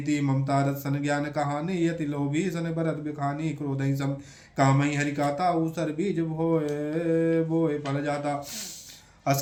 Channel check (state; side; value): identical; both; correlation 1.00